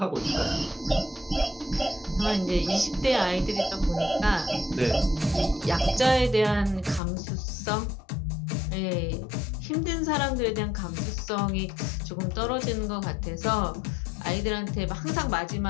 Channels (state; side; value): drops out; right; at 7.0 s